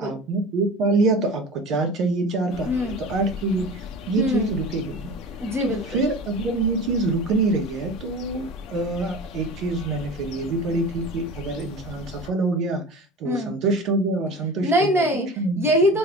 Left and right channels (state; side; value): normal; both; correlation 0.36